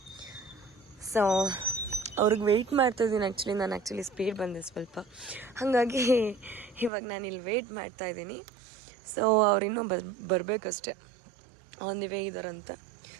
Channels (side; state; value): left; drops out; at 6.9 s